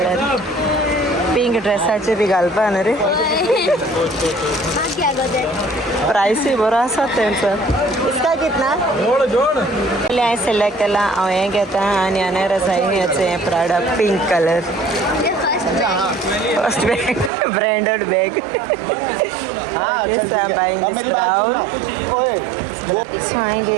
पिंक ड्रेसाचें बी घालपा न्हू रे प्रायसूय बरो आसा तेंचो इसका कितना हांवें सिलेक्ट केला हांव हें घेता आनी अनेर आसा हेचें Prada pink colour first bag branded bag yes I am buying this brown so हांवें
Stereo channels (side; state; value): left; drops out; at 17.3 s